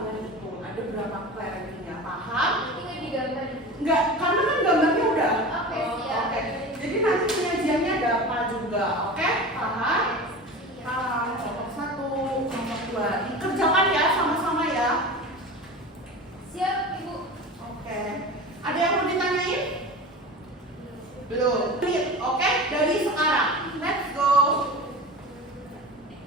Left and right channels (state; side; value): normal; both; correlation 0.33